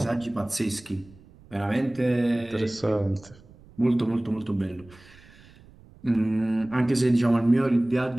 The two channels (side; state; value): right; noise; rumble, 24 dB below the sound